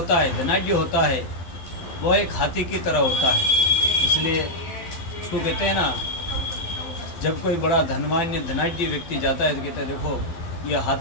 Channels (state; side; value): late; right; 12 ms